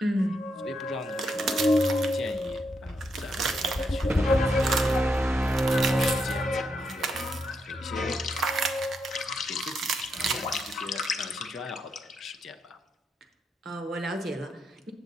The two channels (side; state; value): both; normal; correlation 0.80